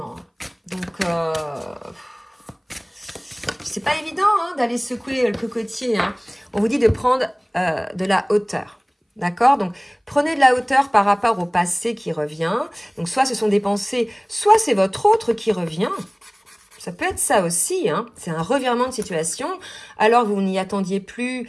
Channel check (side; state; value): both; identical; correlation 1.00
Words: Donc, c'est pas évident hein, d'aller secouer le cocotier. Hein. On vous dit de prendre de la hauteur. D'accord? Donc, prenez de la hauteur par rapport au passé qui revient. Donc, soit ce sont des pensées, soit c'est votre autre qui revient. Ça peut être ça aussi, hein. C'est un revirement de situation. Alors, vous n'y attendiez plus,